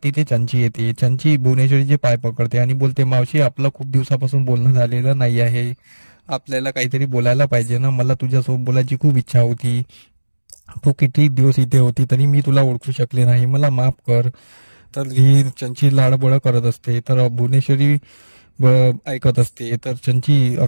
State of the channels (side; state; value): both; inverted; correlation -1.00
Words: तिथे चंची येते. चंची भुवनेश्वरीचे पाय पकडते आणि बोलते, मावशी आपलं खूप दिवसापासून बोलणं झालेलं नाही आहे, आपल्याला काहीतरी बोलायला पाहिजे ना. मला तुझ्यासोबत बोलायची खूप इच्छा होती. तू किती दिवस इथे होती तरी मी तुला ओळखू शकले नाही, मला माफ कर. तर ही चंची लाडबोळ करत असते. तर भुवनेश्वरी ऐकत असते. तर चंची